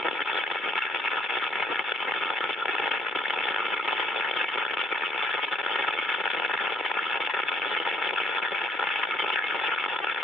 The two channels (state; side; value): normal; both; correlation 0.67